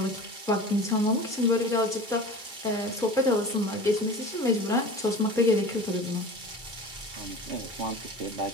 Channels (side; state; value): left; late; 2.3 ms